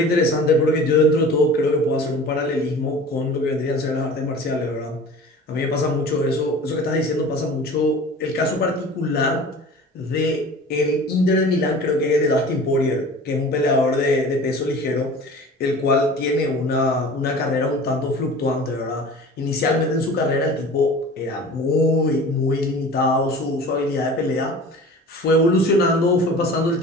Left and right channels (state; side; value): normal; both; correlation 0.40